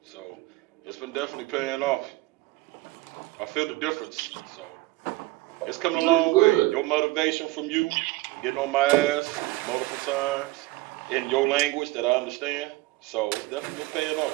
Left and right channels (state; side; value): quieter; left; 19.4 dB